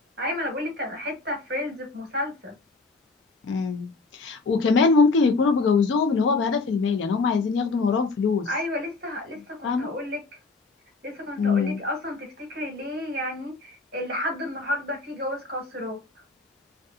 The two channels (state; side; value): quieter; right; 3.7 dB